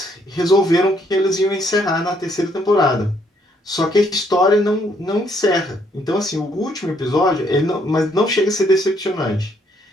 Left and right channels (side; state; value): both; normal; correlation 0.69